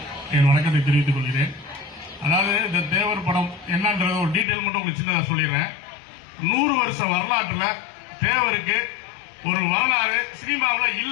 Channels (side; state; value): right; drops out; at 4.5 s